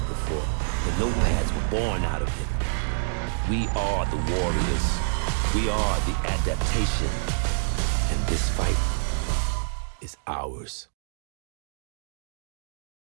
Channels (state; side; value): silent; left; digital silence